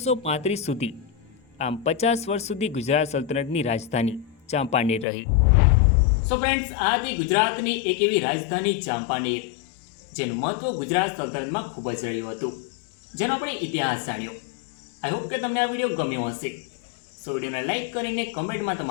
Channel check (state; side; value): drops out; right; at 5.1 s